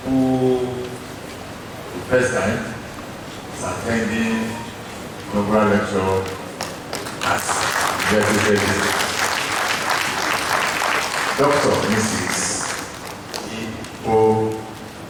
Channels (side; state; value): both; identical; correlation 1.00